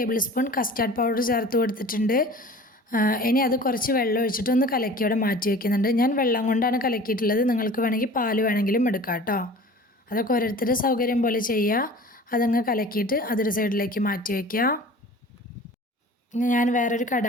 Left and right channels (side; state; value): both; normal; correlation 0.42